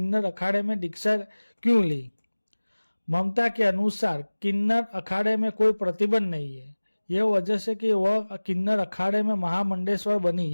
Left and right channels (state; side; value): inverted; both; correlation -1.00